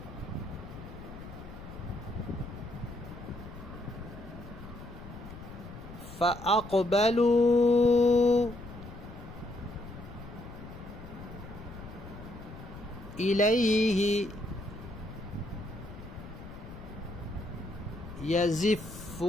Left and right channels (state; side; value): noise; left; rumble, 13 dB below the sound